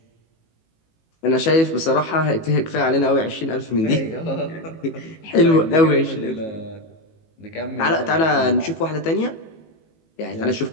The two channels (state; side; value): late; right; 18 ms